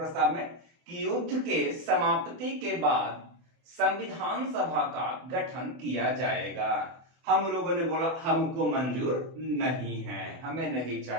में कि युद्ध के समाप्ति के बाद संविधान सभा का गठन किया जाएगा। हम लोगों ने बोला हमको मंजूर नहीं है, हमें नहीं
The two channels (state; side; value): late; left; 24 ms